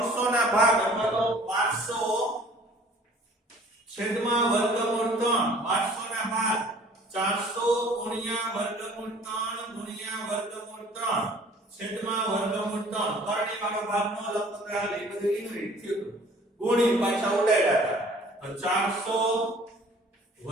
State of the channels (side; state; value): both; normal; correlation 0.52